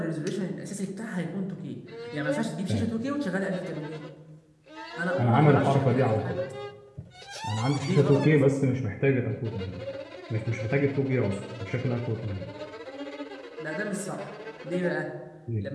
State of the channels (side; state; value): both; identical; correlation 1.00